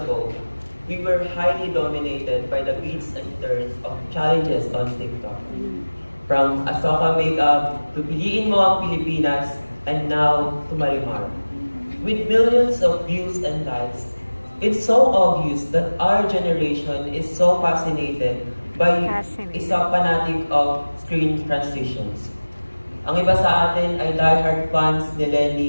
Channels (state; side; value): inverted; both; correlation -1.00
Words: we were highly dominated by the beats and turns of challenges on TikTok. From Asoka Makeup to Piliin Mo Ang Pilipinas, and now to Marimar. With millions of views and likes, it's so obvious that our generation is so fascinated by isa fanatic of screen transitions. Ang iba sa atin ay diehard fans ni